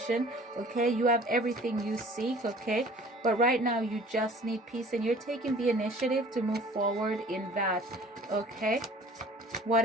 Okay, you have everything you seek. Okay, but right now you just need peace, and you're taking the initiative to move forward in that. Okay, what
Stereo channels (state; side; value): normal; both; correlation 0.49